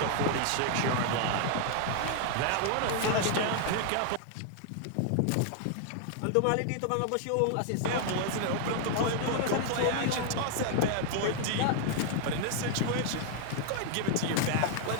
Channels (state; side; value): different; both; correlation 0.00